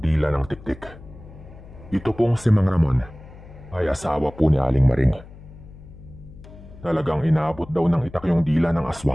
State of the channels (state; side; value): noise; left; hum, 18 dB below the sound